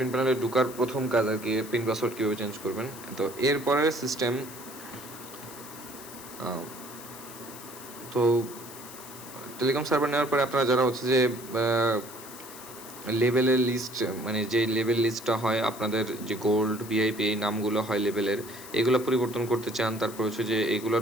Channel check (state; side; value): noise; left; hiss, 15 dB below the sound